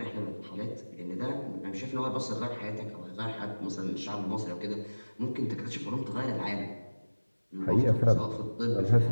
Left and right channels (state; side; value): inverted; both; correlation -1.00